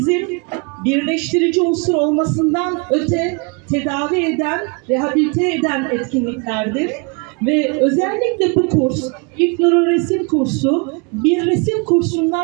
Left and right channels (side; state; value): left; quieter; 32.2 dB